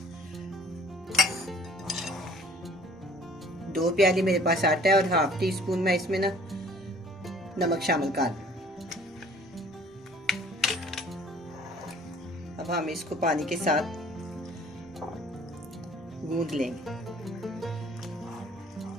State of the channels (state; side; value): normal; both; correlation 0.52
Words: दो प्याली मेरे पास आटा है और हाफ टी स्पून मैं इसमें ना नमक शामिल कर दूं। अब हम इसको पानी के साथ गूंद लेंगे।